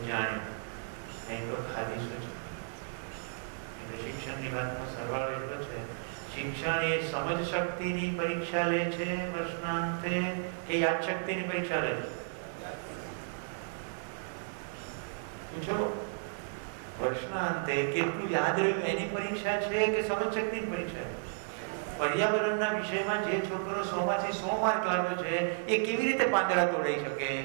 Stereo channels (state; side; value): silent; left; digital silence